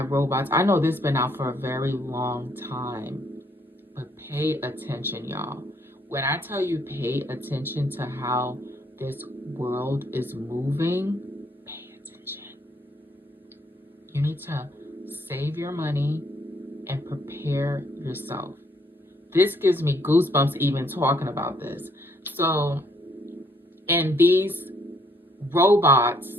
robots. I know this has been out for a very long time, but pay attention, y'all. When I tell you pay attention to how this world is moving, pay attention. You need to save your money and prepare yourself. This gives me goosebumps even talking about this. So, and these robots,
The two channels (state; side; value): normal; both; correlation 0.68